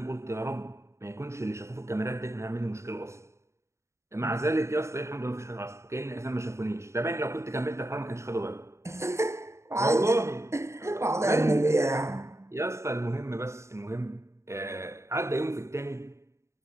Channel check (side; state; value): left; late; 0.14 ms